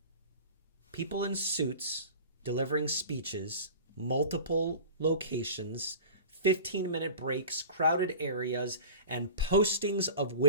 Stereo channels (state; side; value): inverted; both; correlation -0.35